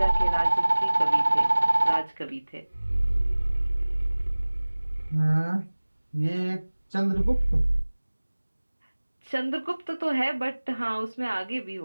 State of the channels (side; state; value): both; inverted; correlation -1.00